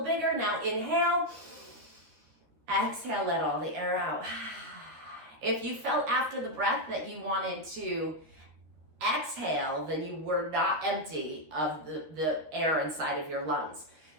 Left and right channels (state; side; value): late; left; 13 ms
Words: bigger. Now inhale. Exhale, let all the air out. If you felt after the breath that you wanted to exhale, then you were not empty of the air inside of your lungs.